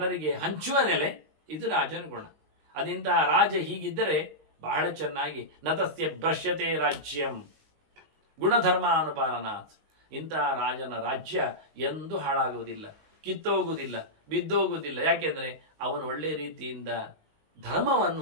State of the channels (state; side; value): late; left; 19 ms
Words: ಹಂಚುವ ನೆಲೆ, ಇದು ರಾಜನ ಗುಣ. ಅದಿಂತಹ ರಾಜ ಹೀಗಿದ್ದರೆ ಬಹಳ ಚೆನ್ನಾಗಿ ನತಸ್ಯ ಭ್ರಶ್ಯತೆ ರಾಜ್ಯಂ ಗುಣಧರ್ಮ ಅನುಪಾಲನಾತ್. ಇಂತಹ ರಾಜನ ರಾಜ್ಯ ಎಂದೂ ಹಾಳಾಗುವುದಿಲ್ಲ, ಕಿತ್ತೋಗುವುದಿಲ್ಲ, ಬಿದ್ದೋಗುವುದಿಲ್ಲ. ಯಾಕೆಂದರೆ ಅವನು ಒಳ್ಳೆ ರೀತಿಯಿಂದ